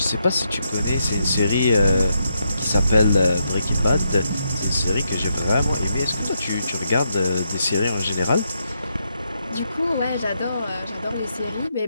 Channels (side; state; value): both; inverted; correlation -0.80